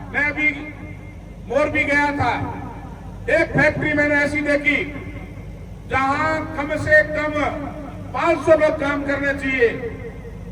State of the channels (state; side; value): identical; both; correlation 1.00